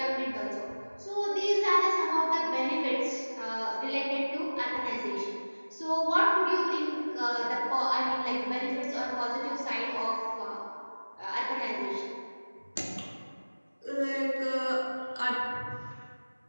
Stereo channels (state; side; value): inverted; both; correlation -1.00